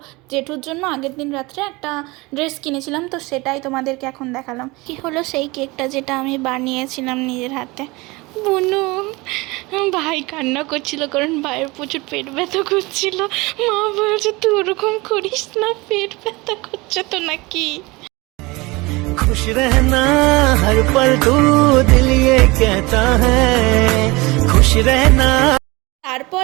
জেঠুর জন্য আগের দিন রাত্রে একটা ড্রেস কিনেছিলাম, তো সেটাই তোমাদেরকে এখন দেখালাম। কি হলো সেই কেকটা যেটা আমি বানিয়েছিলাম নিজের হাতে। বুনু ভাই কান্না করছিল, কারণ ভাইয়ের প্রচুর পেট ব্যথা করছিল। মা বলছে তুই ওরকম করিস না, পেট ব্যথা করছে তো নাকি। खुश रहना हर पल तू दिल ये कहता है खुश रहना। তারপর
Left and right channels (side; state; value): left; quieter; 23.5 dB